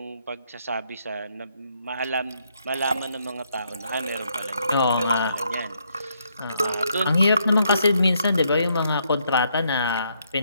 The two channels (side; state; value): both; inverted; correlation -0.74